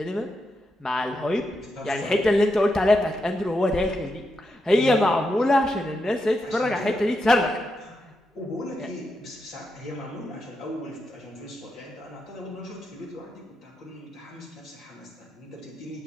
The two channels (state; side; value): normal; both; correlation 0.85